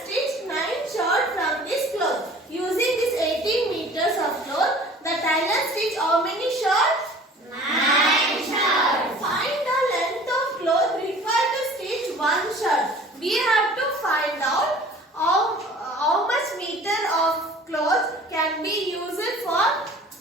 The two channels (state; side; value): normal; both; correlation 0.47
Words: stitch 9 shirts from this cloth. Using this 18 meters of cloth, the tailor stitch how many shirts? 9 shirts. Find the length of cloth required to stitch one shirt. We have to find out how much meter of cloth can be used for